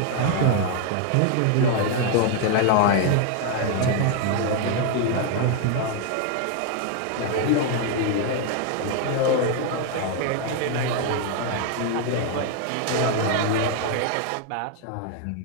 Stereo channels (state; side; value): different; both; correlation 0.01